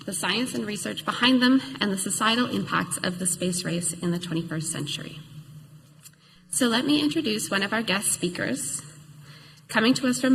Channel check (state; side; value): identical; both; correlation 1.00